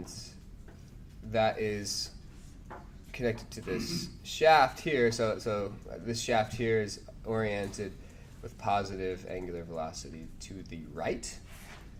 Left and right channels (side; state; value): both; identical; correlation 1.00